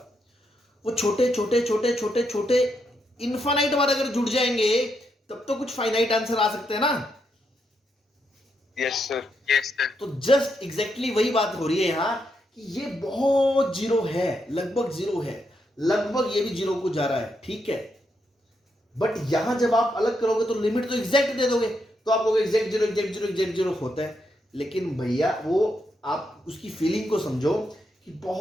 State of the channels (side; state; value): both; normal; correlation 0.81